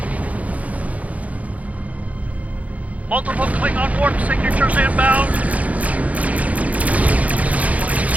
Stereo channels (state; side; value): late; left; 0.069 ms